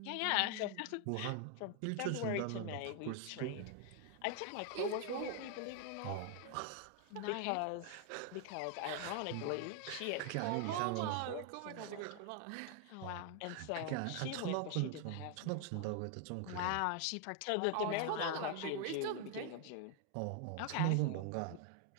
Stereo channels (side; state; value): both; different; correlation 0.00